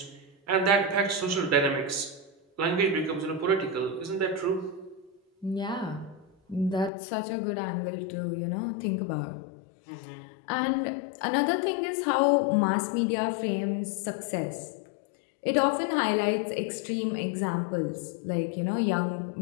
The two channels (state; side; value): drops out; right; at 6.9 s